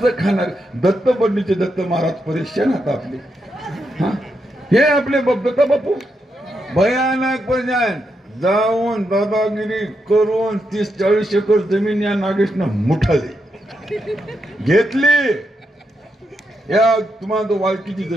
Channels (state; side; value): normal; both; correlation 0.82